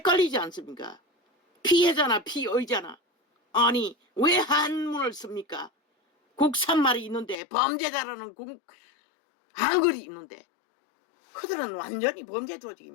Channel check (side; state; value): right; drops out; at 7.4 s